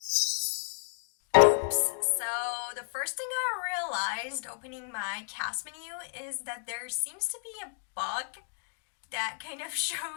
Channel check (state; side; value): silent; right; digital silence